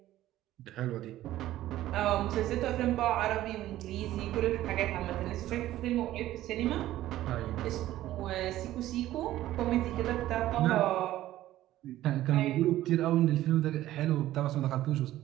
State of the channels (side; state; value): left; quieter; 14.4 dB